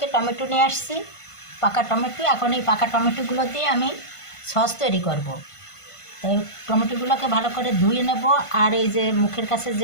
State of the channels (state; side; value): late; right; 1.5 ms